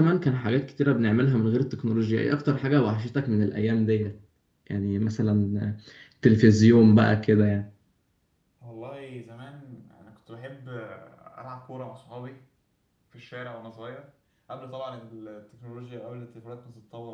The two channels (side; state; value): both; identical; correlation 1.00